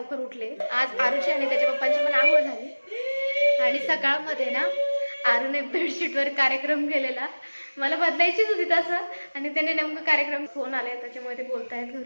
उठले. आज आरुषी आणि त्याच्या पप्पांची पण आंघोळ झाली आणि सकाळमध्ये ना आरूने बेडशीटवर कार्यक्रम केलेला. मला बदलायचीच होती तसं आणि त्याने नेमकं कार्यक्रम फोन आले त्याच्यामुळे ते बोलतायत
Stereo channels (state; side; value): inverted; both; correlation -1.00